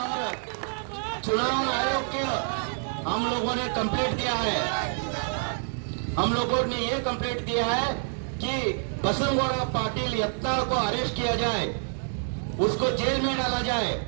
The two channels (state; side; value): silent; left; 60 dB below the other